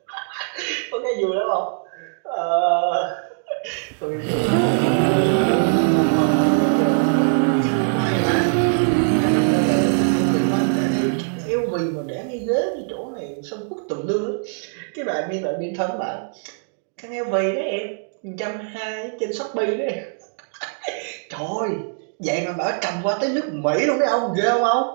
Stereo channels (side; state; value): left; silent; digital silence